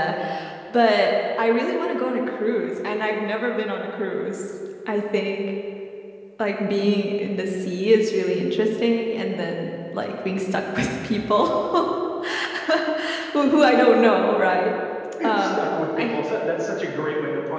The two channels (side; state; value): both; identical; correlation 1.00